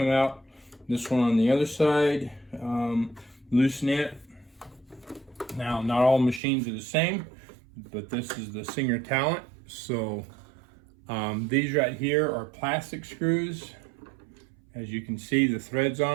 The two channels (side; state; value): left; drops out; at 6.4 s